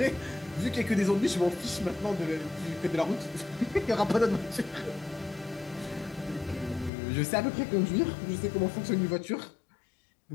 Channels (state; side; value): drops out; right; at 6.9 s